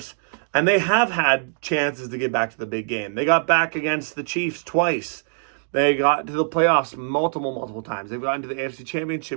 And they have had chances to get back to the big game. They got back against the Chiefs twice. They got to the playoffs multiple times. They've gotten to the AFC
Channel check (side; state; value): left; silent; digital silence